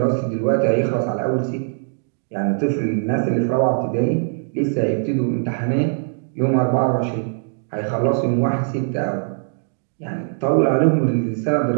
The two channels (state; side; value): silent; left; 65 dB below the other